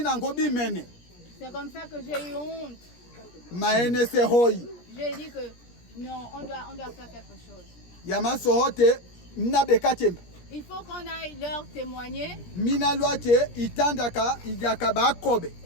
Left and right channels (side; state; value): right; late; 17 ms